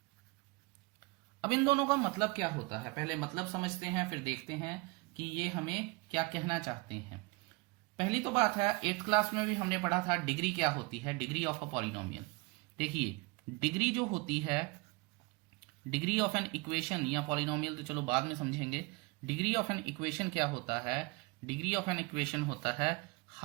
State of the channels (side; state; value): left; quieter; 25.9 dB